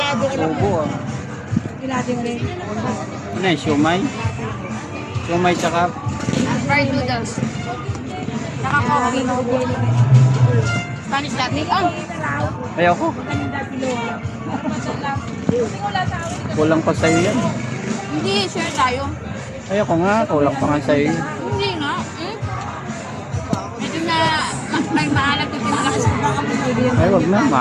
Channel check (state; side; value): identical; both; correlation 1.00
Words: ko lang. ubo ah. Arkilado rin. Ano yung siomay? Siomay tsaka Fried noodles. Saka coffee. Spanish latte. Oh, ayoko. Kulang pa sa'yo yan. hindi. Share tayo. Ayoko nga, kulang pa nga sa'yo. Hindi nga. Medyo na may maalat yung pinalakas ko baka pinagyan. Ay, wag na,